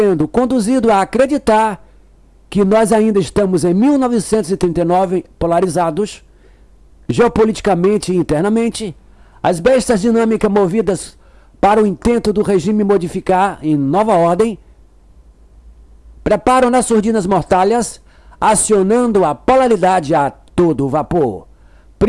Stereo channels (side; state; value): both; identical; correlation 1.00